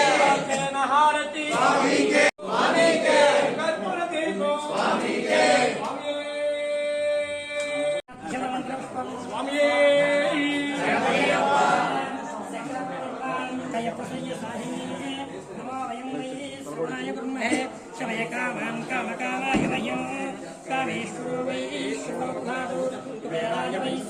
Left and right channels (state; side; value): identical; both; correlation 1.00